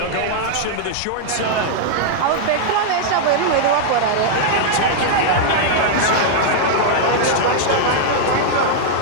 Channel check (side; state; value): both; different; correlation -0.01